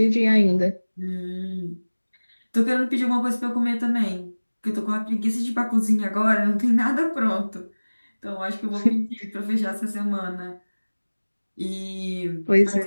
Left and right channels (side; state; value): both; inverted; correlation -1.00